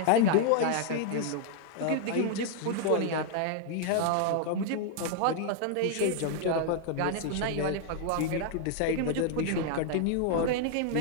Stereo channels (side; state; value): both; different; correlation 0.00